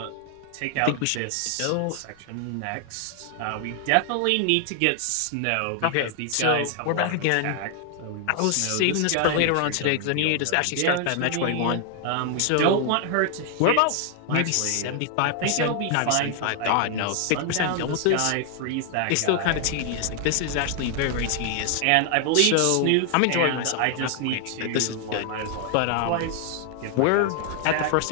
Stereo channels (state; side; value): different; both; correlation 0.00